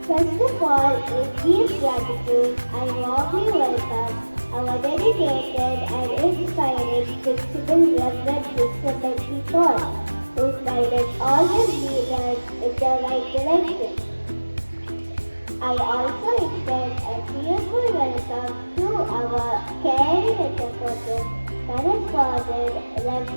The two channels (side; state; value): both; inverted; correlation -1.00